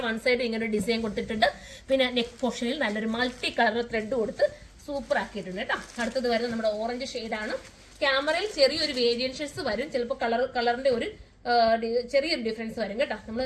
വൺ സൈഡ് ഇങ്ങനെ ഒരു ഡിസൈൻ കൊടുത്തിട്ടുണ്ട്. പിന്നെ നെക്ക് പോർഷനിൽ നല്ലൊരു മൾട്ടി കളർ ത്രെഡ് കൊടുത്ത് സൂപ്പർ ആക്കിയിട്ടുണ്ട് കേട്ടോ. അടുത്തത് വരുന്നത് നമ്മുടെ ഓറഞ്ച് ഷെയ്ഡാണ്. ക്യാമറയിൽ ചെറിയൊരു വേരിയേഷൻസ് വരും. ചിലപ്പോൾ കളറിന്റെ ഒരു ചെറിയൊരു ഡിഫറൻസ് വരും കേട്ടോ.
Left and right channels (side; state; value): both; identical; correlation 1.00